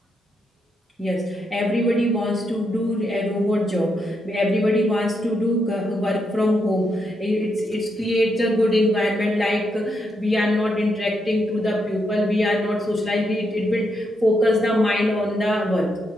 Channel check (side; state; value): both; normal; correlation 0.81